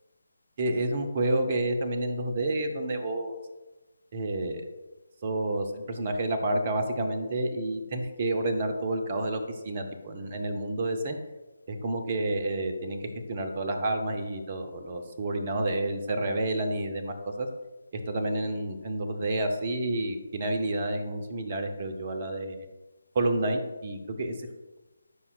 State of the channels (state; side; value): inverted; both; correlation -0.79